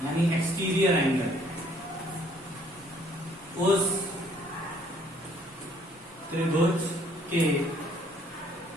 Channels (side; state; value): both; normal; correlation 0.62